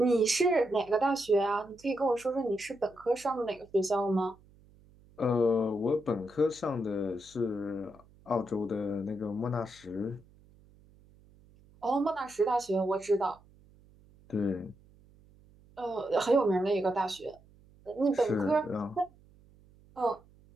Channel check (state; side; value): noise; right; hum, 27 dB below the sound